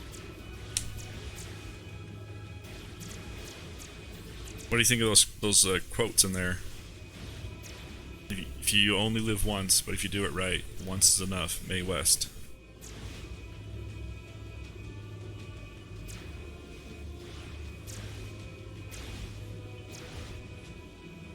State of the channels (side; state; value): both; identical; correlation 1.00